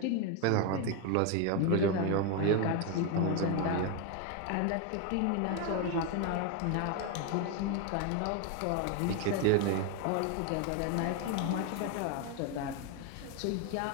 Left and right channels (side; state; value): both; different; correlation 0.02